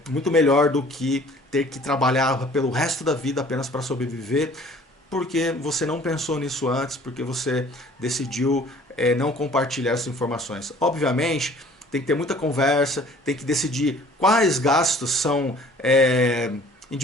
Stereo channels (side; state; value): both; normal; correlation 0.52